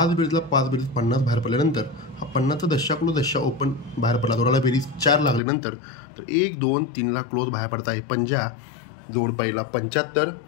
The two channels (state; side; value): drops out; right; at 5.4 s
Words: बेरीजला 5 बेरीज 50 बाहेर पडल्यानंतर हा 50चा 10 क्लोज 10 ओपन बाहेर पडला, जोडाला बेरीज 4 लागल्यानंतर तर 1 2 3ला क्लोज बाहेर पडत आहे पंजा. जोड पहिला 75,